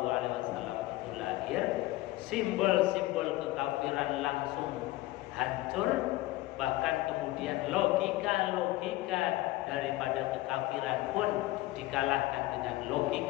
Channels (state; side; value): quieter; right; 17.9 dB